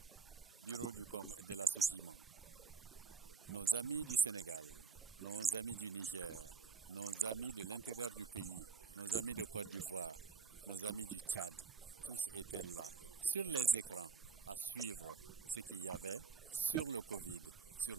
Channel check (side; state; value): left; quieter; 5.4 dB